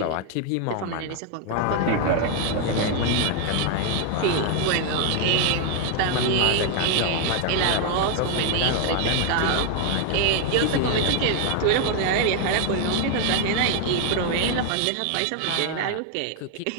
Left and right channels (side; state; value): both; different; correlation 0.00